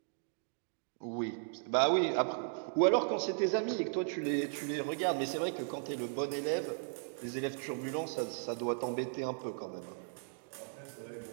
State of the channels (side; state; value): left; silent; digital silence